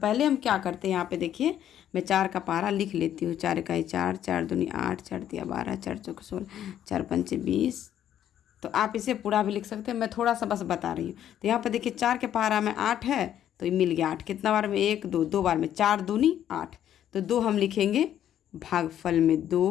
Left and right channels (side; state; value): right; quieter; 10.7 dB